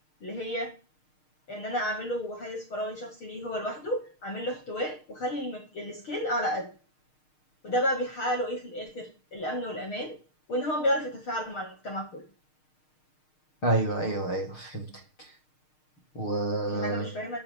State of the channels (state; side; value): late; right; 6.5 ms